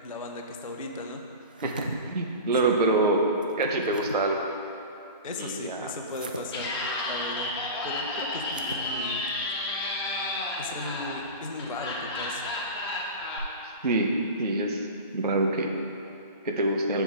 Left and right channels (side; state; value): both; inverted; correlation -0.30